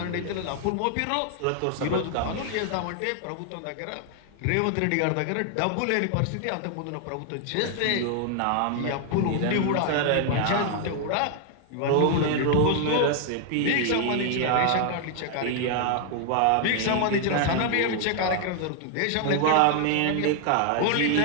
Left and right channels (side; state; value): both; different; correlation 0.00